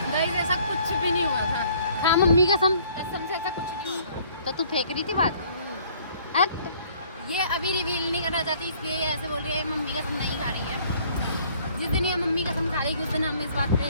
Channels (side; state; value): both; inverted; correlation -0.58